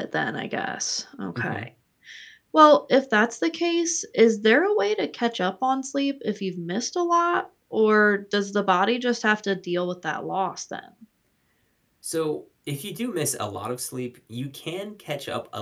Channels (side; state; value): both; identical; correlation 1.00